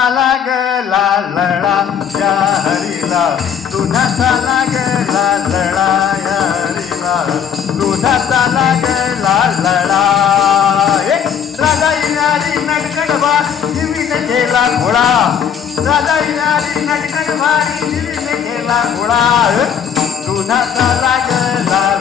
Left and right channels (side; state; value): right; quieter; 7.8 dB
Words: लागला लढा या हरीला दुधाचा लागला लढा या हरीला दुधाचा लागला लढा राजा येणारी नटगड भारी जीवीने केला खोळा राजा येणारी नटगड भारी जीवीने केला खोळा दुधाचा लागला